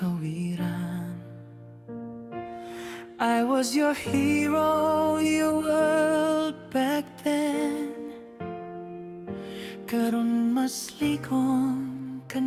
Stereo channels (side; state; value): both; identical; correlation 1.00